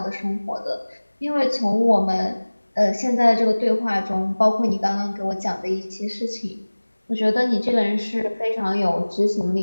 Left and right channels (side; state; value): both; inverted; correlation -1.00